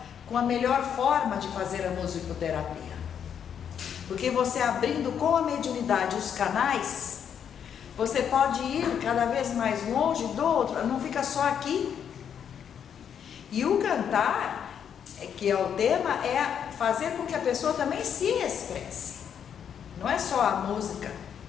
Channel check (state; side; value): quieter; right; 8.3 dB